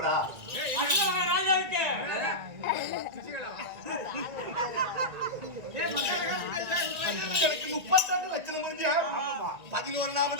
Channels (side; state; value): left; late; 1.9 ms